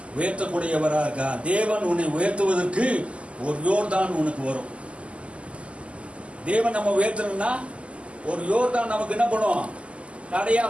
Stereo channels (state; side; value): late; left; 0.057 ms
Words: உயர்த்தக்கூடியவரா இருக்கார். தேவன் உன்னை உயர்த்துவதற்கு ஒரு யோர்தான் உனக்கு வரும். தேவன் நம்ம உயர்த்தணும்னா ஒரு யோர்தான் நமக்கு என்ன பண்ணும், தடையா